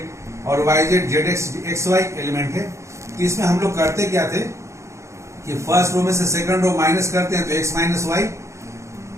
और y z z x x y element है, तो इसमें हम लोग करते क्या थे कि फर्स्ट रो में से सेकंड रो माइनस करते हैं तो x माइनस y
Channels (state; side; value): late; left; 0.14 ms